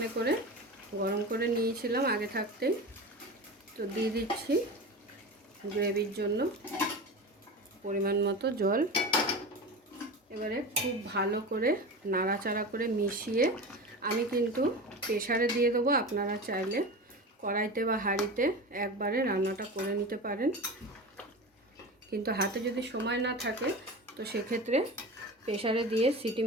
করে গরম করে নিয়েছিলাম আগে থাকতেই। তো দিয়ে দিচ্ছি গ্রেভির জন্য পরিমাণ মতো জল। এবারে খুব ভালো করে নাড়াচাড়া করে মিশিয়ে আমি কিন্তু প্রেসারে দিয়ে দেবো। আপনারা চাইলে কড়াইতে বা হাঁড়িতে একবারে রান্নাটা করে নিতে পারেন, কিন্তু হাতে যদি সময় না থাকে তো সেক্ষেত্রে প্রেসারে দিয়ে সিটি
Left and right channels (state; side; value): normal; both; correlation 0.28